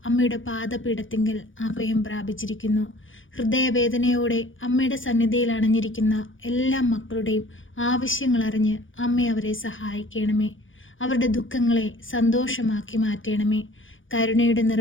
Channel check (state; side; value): late; right; 0.57 ms